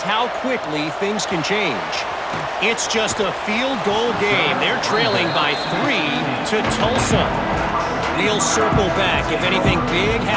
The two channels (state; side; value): identical; both; correlation 1.00